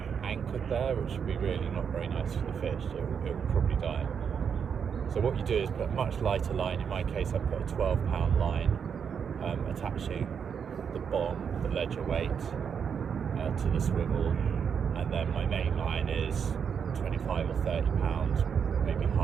anchored there, which would be really not very nice for the fish. It will probably die. So what you do is put a much lighter line. In my case, I put a 12-pound line, attaching the bomb, the ledger weight, to the swivel, and then my main line is 25 or 30 pounds, maybe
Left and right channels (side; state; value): left; quieter; 7.1 dB